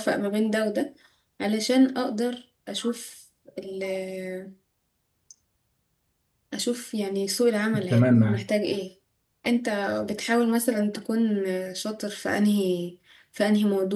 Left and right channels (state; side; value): identical; both; correlation 1.00